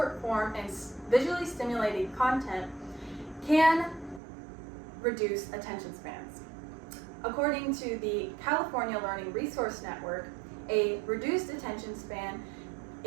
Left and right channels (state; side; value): drops out; left; at 4.2 s